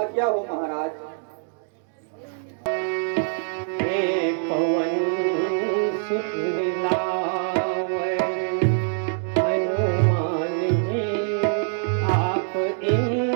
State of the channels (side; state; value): left; silent; digital silence